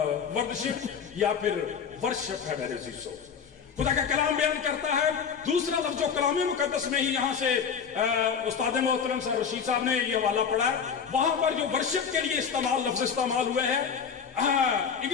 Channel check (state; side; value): quieter; right; 6.8 dB